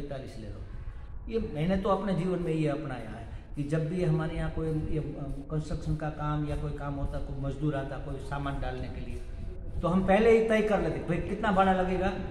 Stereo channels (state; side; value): identical; both; correlation 1.00